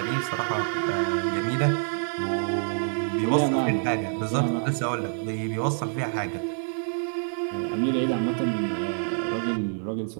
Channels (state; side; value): silent; left; digital silence